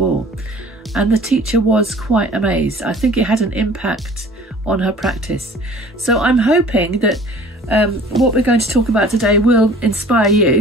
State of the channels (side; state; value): both; normal; correlation 0.49